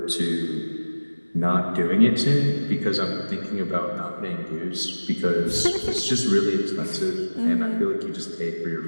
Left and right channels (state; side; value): inverted; both; correlation -1.00